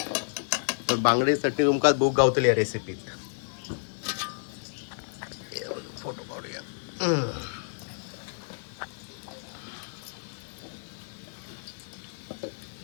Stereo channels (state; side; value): silent; right; digital silence